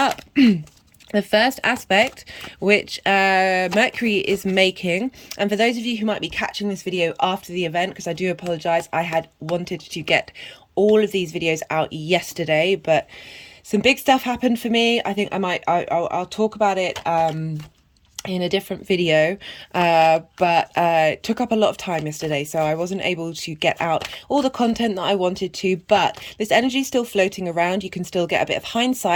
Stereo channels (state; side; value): identical; both; correlation 1.00